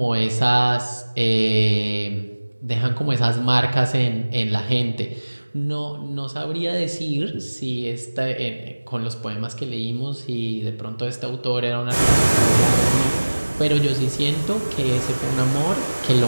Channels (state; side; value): inverted; both; correlation -1.00